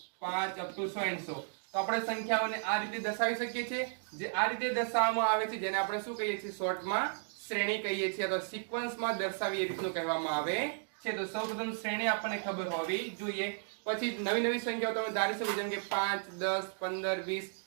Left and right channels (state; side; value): silent; left; digital silence